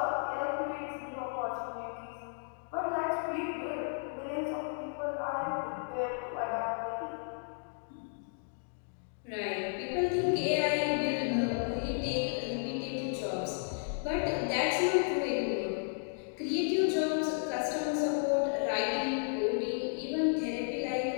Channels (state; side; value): silent; right; digital silence